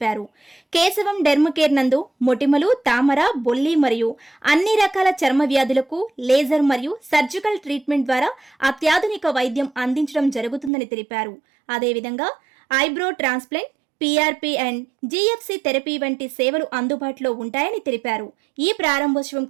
కేశవం డెర్మకేర్ నందు మొటిమలు, తామర, బొల్లి మరియు అన్ని రకాల చర్మ వ్యాధులకు లేజర్ మరియు సర్జికల్ ట్రీట్మెంట్ ద్వారా అత్యాధునిక వైద్యం అందించడం జరుగుతుందని తెలిపారు. అదేవిధంగా eyebrow transplant, PRP and GFC therapy వంటి సేవలు అందుబాటులో ఉంటాయని తెలిపారు. ఈ ప్రారంభోత్సవం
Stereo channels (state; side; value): drops out; left; at 10.7 s